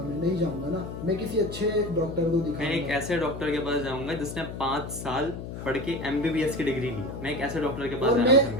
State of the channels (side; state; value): left; noise; hum, 8 dB below the sound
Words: میں نہیں جاؤں گا نا. میں کسی اچھے ڈاکٹر کو دکھاؤں گا. میں ایک ایسے ڈاکٹر کے پاس جاؤں گا جس نے 5 سال پڑھ کے MBBS کی ڈگری لی. میں ایک ایسے ڈاکٹر کے پاس جانا پسند